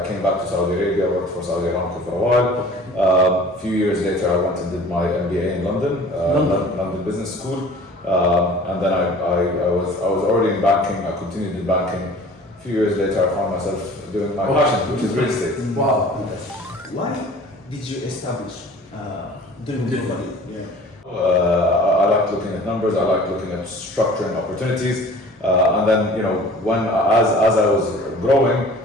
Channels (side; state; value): both; normal; correlation 0.46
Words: came back to Saudi Arabia, worked for Saudi Aramco for a while. A few years later, I went and did my MBA in London, London Business School. And then I was already in banking. I continued in banking. A few years later, I found myself doing my passion, which is real estate. Wow. Why did you establish Driven Properties? I like looking at numbers. I like looking at structuring opportunities. And then, as I was growing,